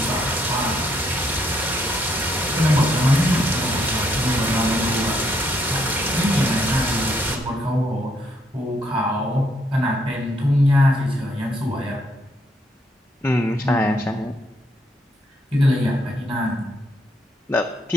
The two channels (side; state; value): both; normal; correlation 0.73